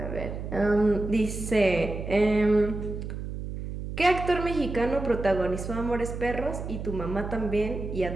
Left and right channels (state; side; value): noise; right; hum, 7 dB below the sound